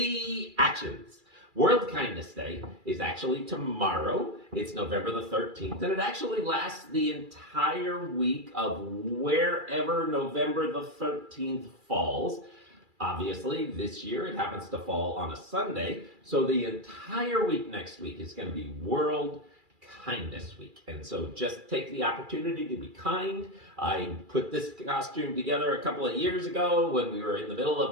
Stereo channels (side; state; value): left; late; 2.3 ms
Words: World Kindness Day is actually tomorrow. It's November the 13th, and it actually lasts the entire week of wherever November the 13th falls. Obviously, this year it happens to fall on a Sunday, so the entire week next week is going to be World Kindness Week. And so just take the opportunity to be kind. I put this costume together a couple of years ago when we were in the middle